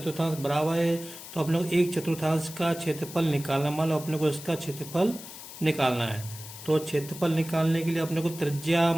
बराबर है। तो अपने को एक चतुर्थांश का क्षेत्रफल निकालना, मान लो अपने को इसका क्षेत्रफल निकालना है। तो क्षेत्रफल निकालने के लिए अपने को त्रिज्या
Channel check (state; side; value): noise; left; hiss, 13 dB below the sound